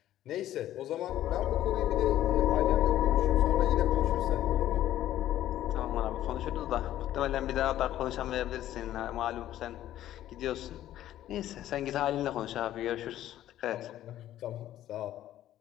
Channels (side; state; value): right; quieter; 12.8 dB